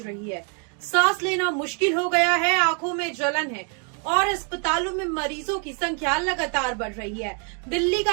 रही है। सांस लेना मुश्किल हो गया है, आंखों में जलन है और अस्पतालों में मरीजों की संख्या लगातार बढ़ रही है। दिल्ली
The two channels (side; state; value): left; quieter; 39.9 dB